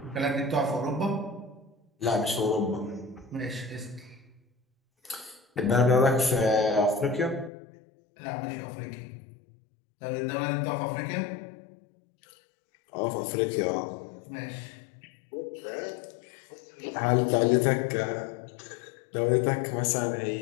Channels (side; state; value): right; drops out; at 7.5 s